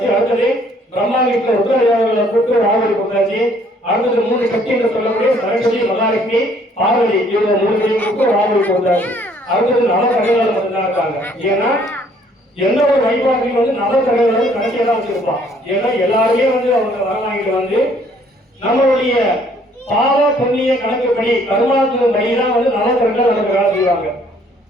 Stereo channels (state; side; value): normal; both; correlation 0.62